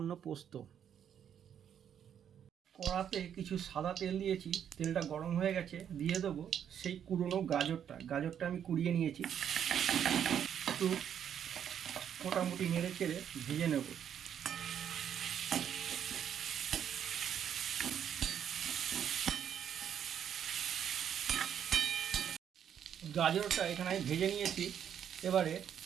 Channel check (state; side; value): quieter; left; 9.0 dB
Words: পোস্ত। কড়াতে কিছু সাদা তেল দিয়েছি, তেলটা গরম হয়ে গেছে। দিয়ে দেবো সেই কুড়োনো গাজরটা আমি কুড়িয়ে নিয়েছি। একটু মোটামুটি নেড়ে চেড়ে ভেজে নেব। গাজরটা এখানে আমি ভেজে নিয়েছি, এবারে